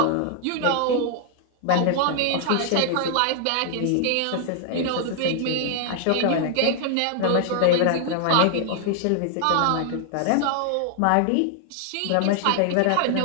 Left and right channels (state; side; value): different; both; correlation 0.00